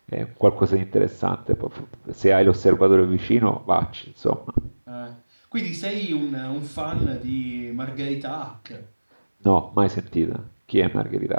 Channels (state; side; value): inverted; both; correlation -1.00